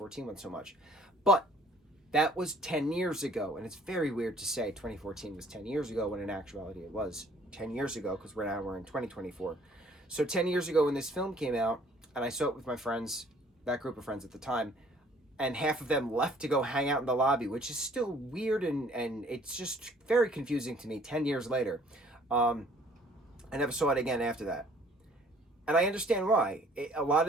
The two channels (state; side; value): normal; both; correlation 0.57